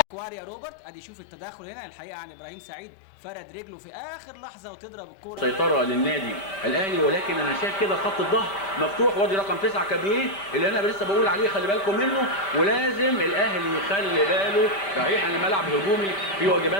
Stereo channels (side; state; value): right; late; 5.1 ms